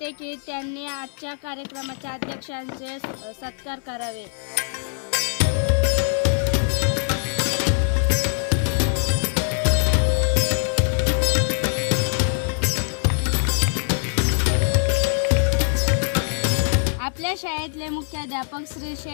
की त्यांनी आजच्या कार्यक्रमाच्या अध्यक्षांचे सत्कार करावे. आपल्या शाळेतले मुख्याध्यापक श्री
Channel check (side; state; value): right; silent; 62 dB below the other